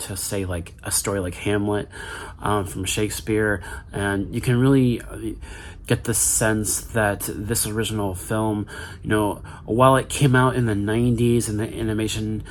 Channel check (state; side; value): identical; both; correlation 1.00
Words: say, like a story like Hamlet from Shakespeare. And you can really get the sense that this original film, while it came out in the 90s and the animation